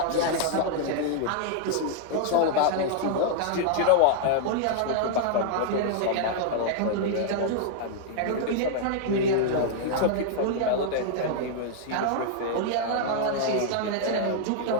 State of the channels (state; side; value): different; both; correlation -0.01